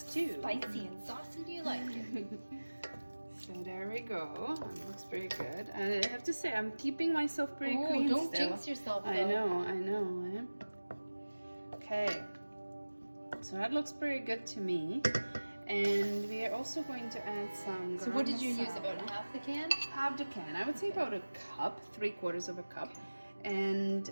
Spicy and saucy, do you like it? So there we go. It looks pretty good. And I have to say, I'm keeping myself pretty clean don't still. jinx yourself, though. I know. Eh? Okay. So that looks pretty good to me. And we are also going to add some So what did you use? garam About masala. half the can? Half the can. I would say about a cup, 3/4 of a cup. And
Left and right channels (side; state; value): both; inverted; correlation -1.00